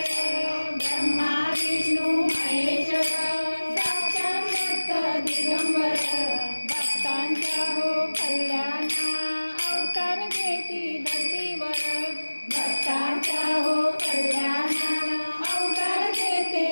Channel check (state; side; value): inverted; both; correlation -1.00